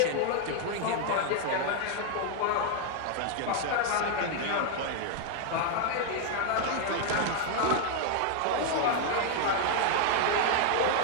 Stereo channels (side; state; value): both; different; correlation 0.00